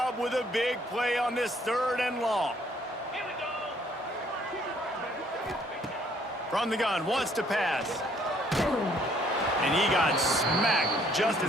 with a big play on this 3rd and long. From the gun, wants to pass. And he got smacked just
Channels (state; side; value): normal; both; correlation 0.64